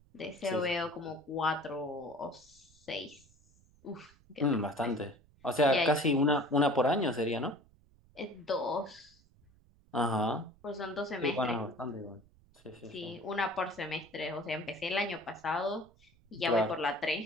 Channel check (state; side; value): noise; right; rumble, 29 dB below the sound